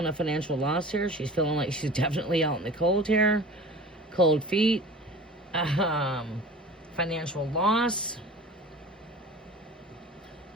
a financial loss here. She's feeling like she's definitely out in the cold here. Cold feet. Financial loss.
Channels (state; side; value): normal; both; correlation 0.39